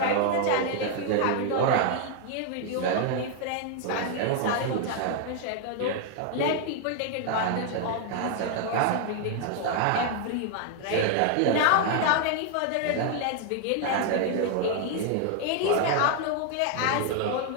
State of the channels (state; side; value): different; both; correlation 0.00